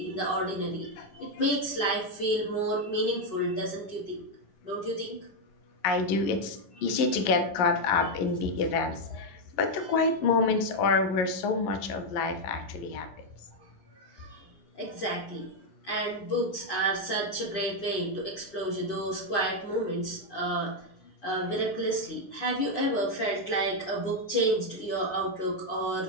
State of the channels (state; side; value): late; right; 11 ms